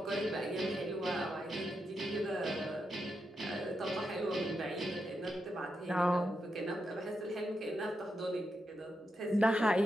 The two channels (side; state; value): both; normal; correlation 0.85